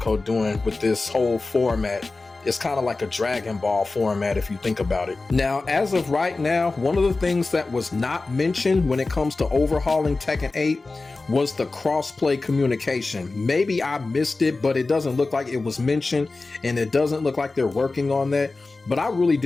doing with this whole format. It's kind of like a Dragon Ball format if you think about it. Now, as of right now, one of the things that was not mentioned when it comes to overhauling Tekken 8 was the crossplay communication. Maybe I missed it, but it doesn't look like it was mentioned, and it doesn't look like they're working on that. But I really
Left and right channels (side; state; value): right; quieter; 3.5 dB